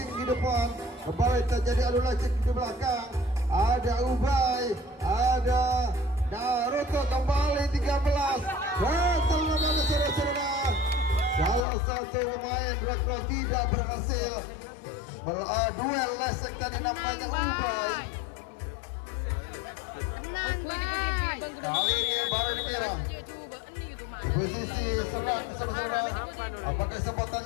di depan. Kembali terjadi adu lacik di belakang. Ada Ubay, ada Naruto kembali 13. Gatal namanya saudara. Salah satu pemain Rekron tidak berhasil duel lesek tadi namanya Ubay. Kali ini baru dimerah. Posisi serang saudara. Apakah kesempatan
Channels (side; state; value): right; drops out; at 11.7 s